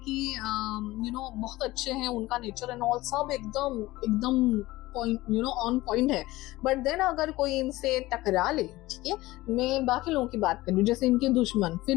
बहुत अच्छे हैं उनका नेचर एंड ऑल, सब एकदम पॉइंट ऑन पॉइंट है, बट देन अगर कोई इनसे टकरा ले, ठीक है, मैं बाकी लोगों की बात कर रही हूँ, जैसे इनके दुश्मन,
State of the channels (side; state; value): right; quieter; 18.5 dB